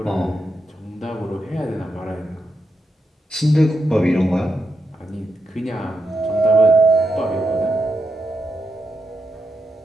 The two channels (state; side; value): normal; both; correlation 0.85